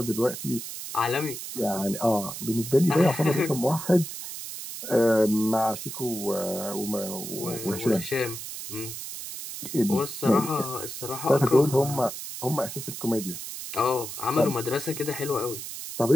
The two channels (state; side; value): noise; right; hiss, 8 dB below the sound